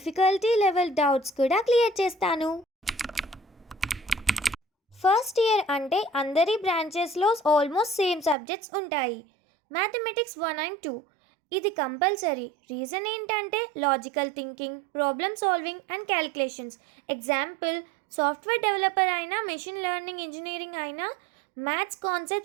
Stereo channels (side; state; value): left; drops out; at 8.3 s